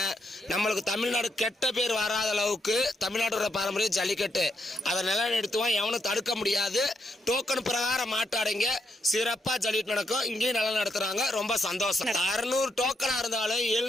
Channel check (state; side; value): normal; both; correlation 0.79